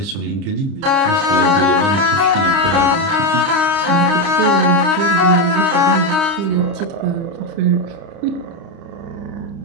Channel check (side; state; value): left; late; 30 ms